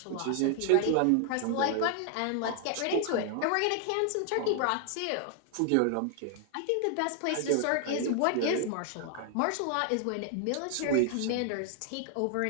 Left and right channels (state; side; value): different; both; correlation 0.00